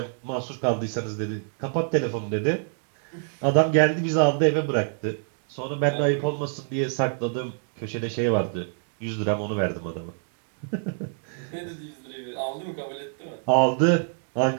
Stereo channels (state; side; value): silent; left; digital silence